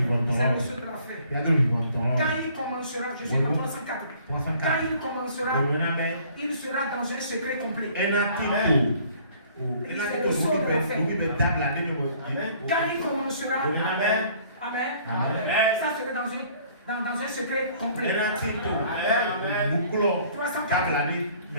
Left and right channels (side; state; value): both; inverted; correlation -0.56